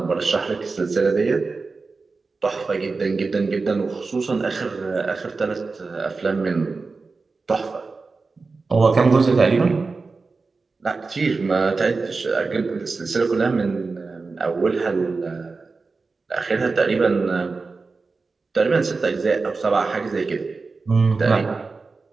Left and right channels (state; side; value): quieter; left; 4.1 dB